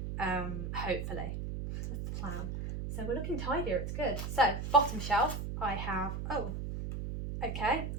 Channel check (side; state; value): right; noise; hum, 4 dB below the sound